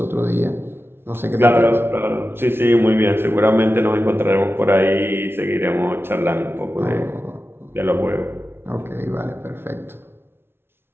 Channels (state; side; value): late; left; 0.11 ms